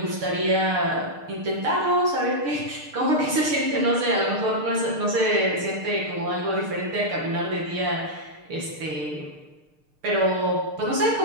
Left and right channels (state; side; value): late; left; 6.6 ms